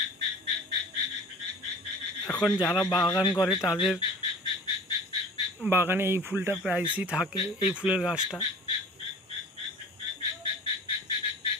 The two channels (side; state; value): both; normal; correlation 0.43